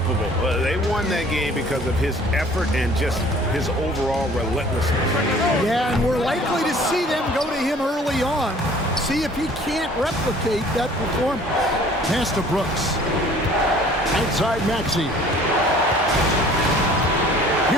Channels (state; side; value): normal; both; correlation 0.52